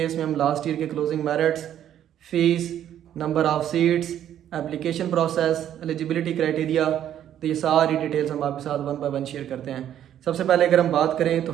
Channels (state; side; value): quieter; left; 10.7 dB